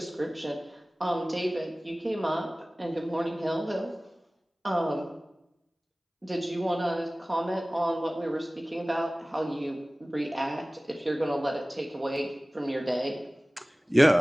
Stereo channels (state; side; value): normal; both; correlation 0.98